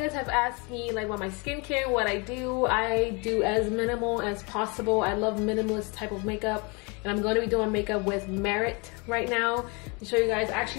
have asked me like about my skincare, what I do. I do as minimal as possible. I love minimalist type of makeup, and I'm going to be doing makeup with Merit right now to show you guys.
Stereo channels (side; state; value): right; quieter; 30.4 dB